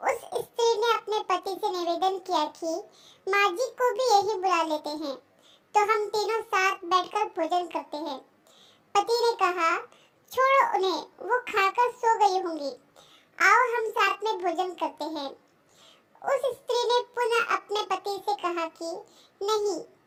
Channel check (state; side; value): identical; both; correlation 1.00